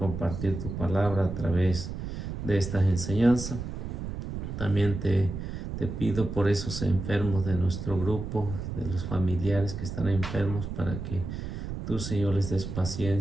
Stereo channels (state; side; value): noise; right; rumble, 6 dB below the sound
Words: tu palabra a través de esta enseñanza. También te pido por esos enfermos de nuestro grupo, de los familiares que están enfermos, para que tú, Señor, les des